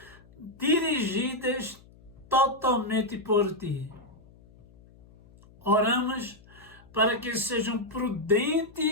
dirigidas totalmente por ti. Oramos para que sejam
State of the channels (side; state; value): left; noise; hum, 25 dB below the sound